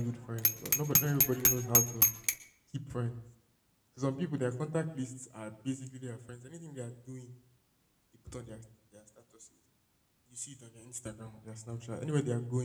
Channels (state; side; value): identical; both; correlation 1.00